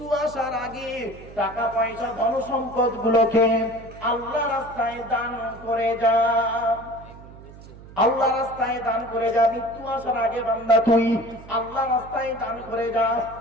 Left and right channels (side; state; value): right; noise; hum, 18 dB below the sound